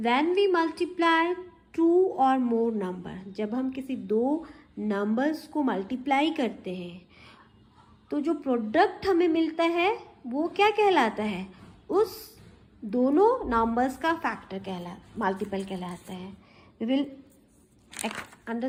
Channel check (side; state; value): both; identical; correlation 1.00